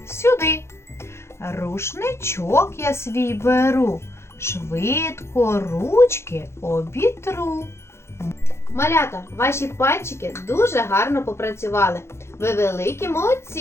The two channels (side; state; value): right; late; 0.13 ms